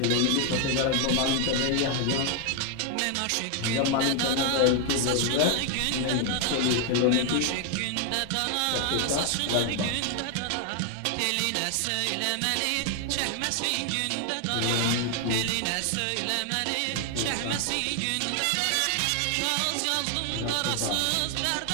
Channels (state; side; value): different; both; correlation 0.00